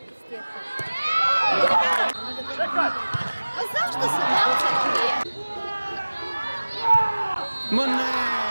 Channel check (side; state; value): both; inverted; correlation -1.00